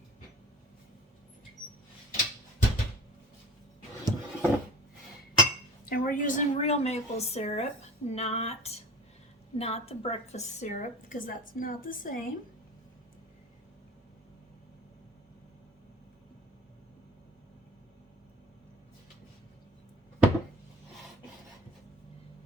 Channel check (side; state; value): both; normal; correlation 0.40